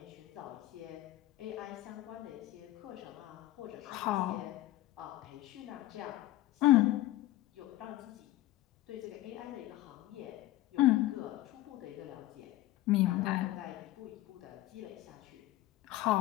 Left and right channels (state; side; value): quieter; right; 15.9 dB